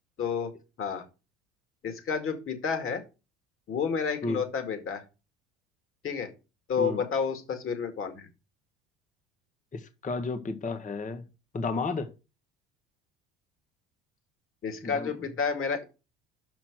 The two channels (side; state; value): right; quieter; 5.1 dB